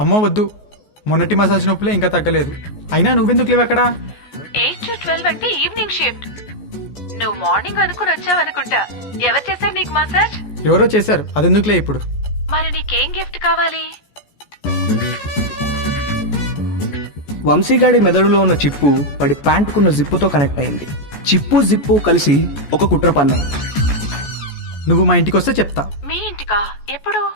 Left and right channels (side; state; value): right; late; 14 ms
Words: అమ్మో వద్దు, మొన్నటి మసాజ్ నొప్పులే ఇంకా తగ్గలేదు. అయినా నువ్వెందుకు లేవు అక్కడ? 8 to 12 అంటే ఈవినింగ్ షిఫ్ట్. నువ్వు మార్నింగ్ అనుకుని వచ్చావనుకుంటా. ఎవరు చేశారు నీకు మసాజ్? ఎవరో చేశారు, అదెందుకులే ఇప్పుడు. మరి నీకేం గిఫ్ట్ కావాలి? వంశీగాడి మెదడులో ఉన్న చిప్పు వాడి ప్యాంటుకున్న జిప్పుతో కనెక్ట్ అయింది. చిప్పు జిప్పు కలిసి ఒక కుట్ర పన్నాయి. నువ్వు మా ఇంటికి వస్తే చెప్తా. మీ ఇంటికా? ఎప్పుడు?